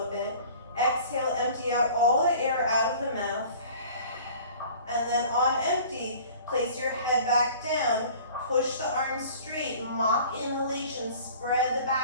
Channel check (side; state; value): both; inverted; correlation -0.47